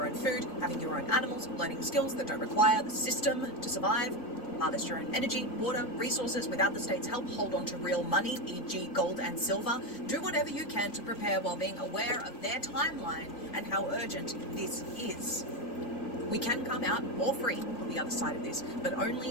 own food, having your own animals, learning skills that don't require the system to survive, harvest your own energy, water, resources without the state's help, hold on to real money, e.g. gold and silver. Do whatever you can to prepare while being aware of their timeline and how urgent this is. We can come out more free on the other side of this, but only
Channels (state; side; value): late; right; 4.0 ms